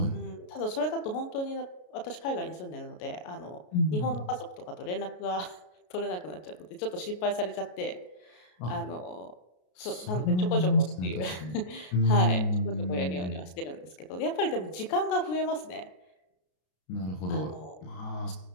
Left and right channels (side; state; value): right; late; 33 ms